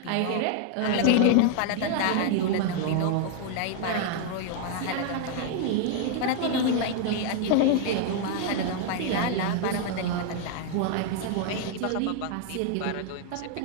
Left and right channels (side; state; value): both; different; correlation 0.00